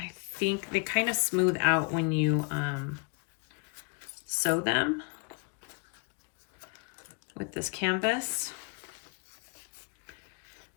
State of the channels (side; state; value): right; quieter; 35.3 dB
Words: think they kind of smooth out when you sew them with this canvas.